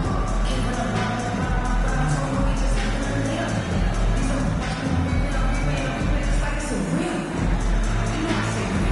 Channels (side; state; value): both; identical; correlation 1.00